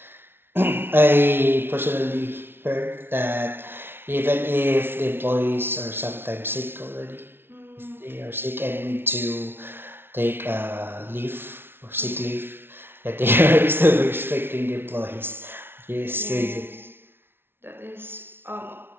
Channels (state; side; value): late; left; 0.11 ms